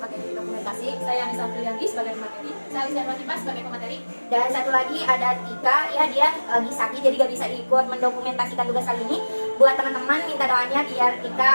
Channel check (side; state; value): both; inverted; correlation -1.00